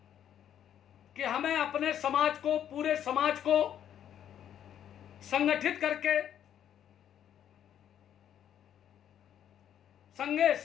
कि हमें अपने समाज को, पूरे समाज को संगठित करके संगे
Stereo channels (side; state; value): right; quieter; 10.0 dB